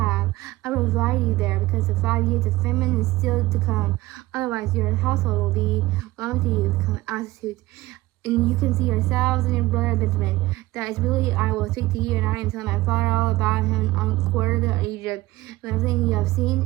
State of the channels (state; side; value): quieter; left; 18.4 dB